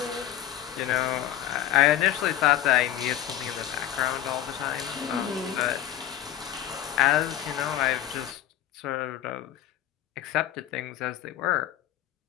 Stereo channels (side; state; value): right; quieter; 12.1 dB